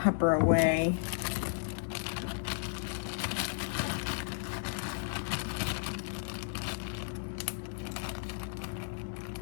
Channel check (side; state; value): right; silent; 55 dB below the other